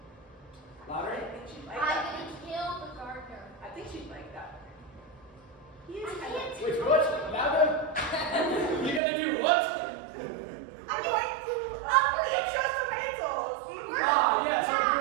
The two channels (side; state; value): left; drops out; at 9.0 s